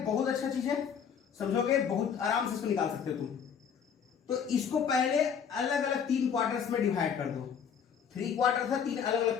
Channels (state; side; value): quieter; right; 7.3 dB